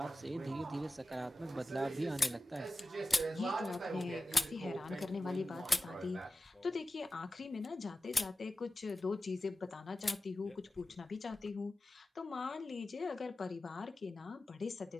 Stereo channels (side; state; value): both; normal; correlation 0.94